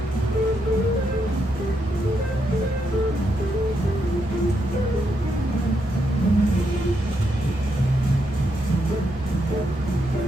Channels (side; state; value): both; normal; correlation 0.80